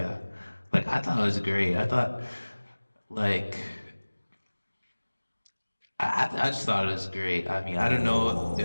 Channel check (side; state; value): both; inverted; correlation -1.00